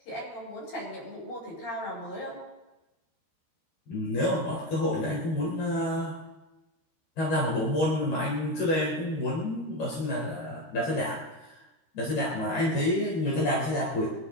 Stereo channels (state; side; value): late; right; 13 ms